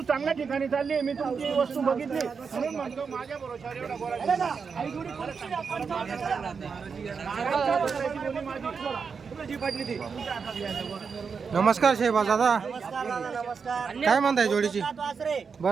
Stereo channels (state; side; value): quieter; left; 5.7 dB